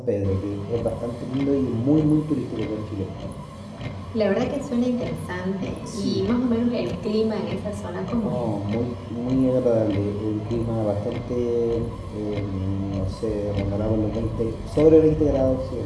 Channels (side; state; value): both; identical; correlation 1.00